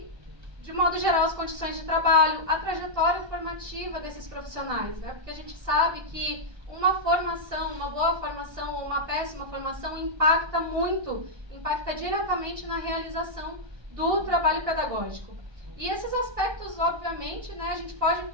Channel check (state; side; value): late; left; 1.2 ms